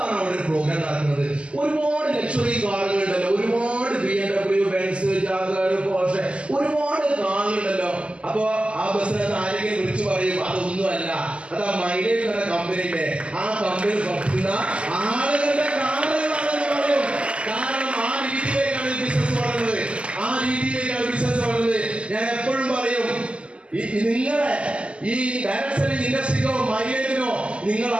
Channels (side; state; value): left; late; 0.056 ms